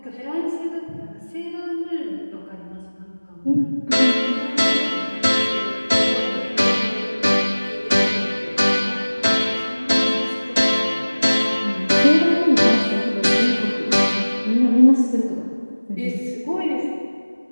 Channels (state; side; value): inverted; both; correlation -1.00